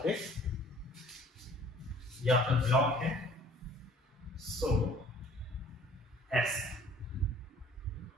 ये आपका ब्लॉक है, सो S,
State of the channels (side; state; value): both; normal; correlation 0.53